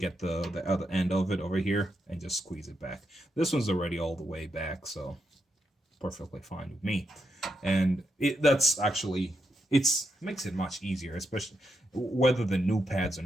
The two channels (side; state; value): both; normal; correlation 0.83